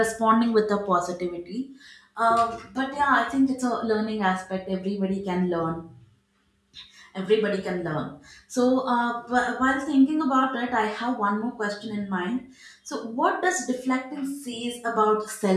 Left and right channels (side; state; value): both; identical; correlation 1.00